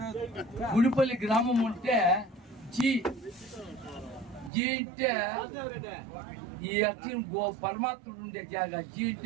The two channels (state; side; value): drops out; left; at 4.5 s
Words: గుడిపల్లి గ్రామం ఉంటే జీ అంటే ఈ అక్షరం పరమాత్ముడు ఉండే జాగా. జీ